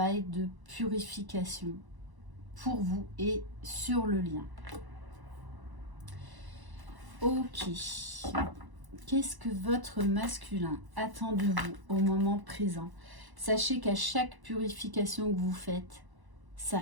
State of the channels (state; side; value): late; left; 1.0 ms